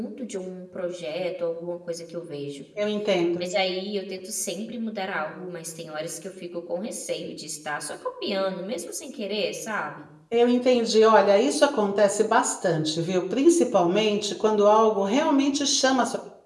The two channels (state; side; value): identical; both; correlation 1.00